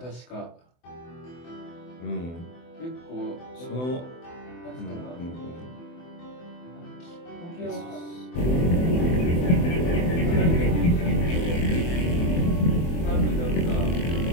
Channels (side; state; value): right; late; 24 ms